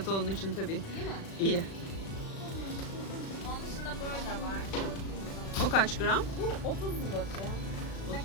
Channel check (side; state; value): right; late; 36 ms